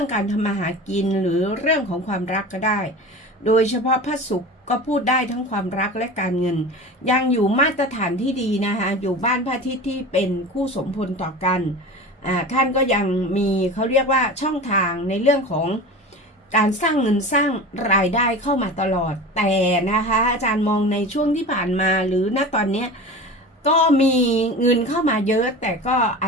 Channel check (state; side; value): normal; both; correlation 0.33